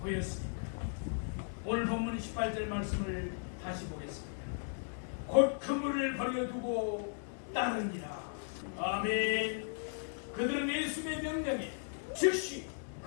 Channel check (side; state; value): right; silent; digital silence